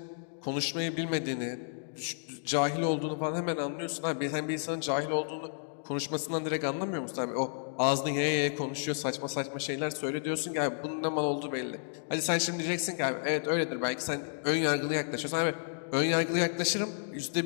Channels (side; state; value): right; silent; digital silence